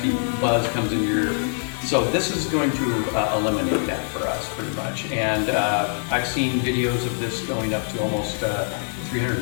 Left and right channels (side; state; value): right; silent; digital silence